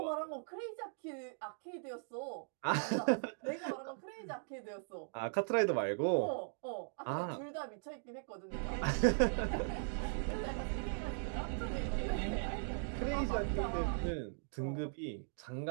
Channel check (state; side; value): silent; left; digital silence